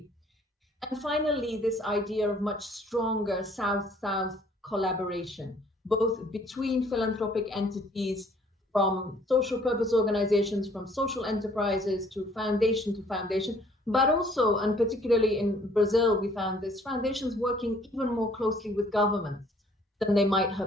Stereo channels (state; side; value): normal; both; correlation 0.59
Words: And finally, this idea of much stronger South-South collaboration, both between philanthropic entities, from social purpose organizations, from social enterprises to foundation, But also, and particularly in Brazil, we found this, foundations working even more closely with governments than they might